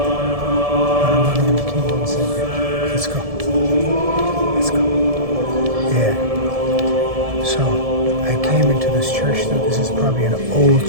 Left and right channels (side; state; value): left; late; 1.7 ms